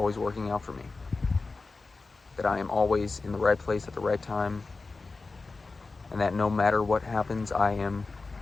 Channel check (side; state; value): right; quieter; 3.8 dB